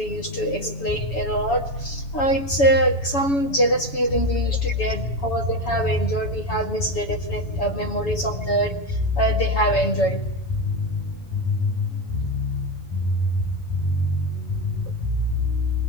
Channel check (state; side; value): late; right; 7.1 ms